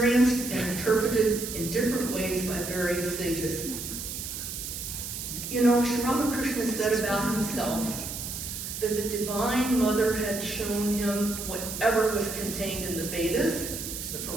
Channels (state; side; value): noise; right; hiss, 6 dB below the sound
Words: and interpreted in different ways by various sages. You know, Sri Ramakrishna said about himself that the Divine Mother had shown him whatever was contained in the Vedas, the